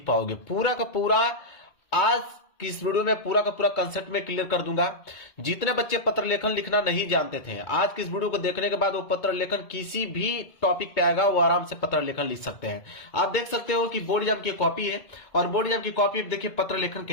पाओगे पूरा का पूरा। आज की इस वीडियो में पूरा का पूरा कंसेप्ट में क्लियर कर दूंगा। जितने बच्चे पत्र लेखन लिखना नहीं जानते थे, आज की इस वीडियो को देखने के बाद वो पत्र लेखन किसी भी टॉपिक पे आएगा, वो आराम से पत्र लेखन लिख सकते हैं। आप देख सकते हो कि बोर्ड एग्जाम की कॉपी है और बोर्ड एग्जाम की कॉपी देखिए पत्र लेखन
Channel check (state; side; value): late; right; 2.2 ms